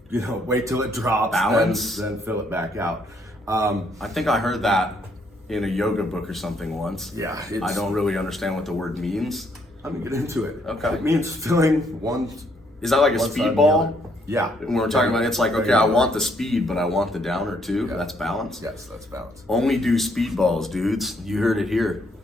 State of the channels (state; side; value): normal; both; correlation 0.70